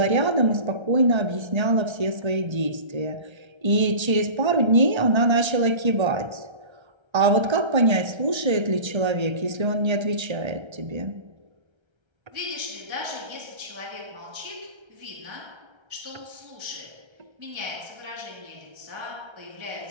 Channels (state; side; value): late; left; 1.3 ms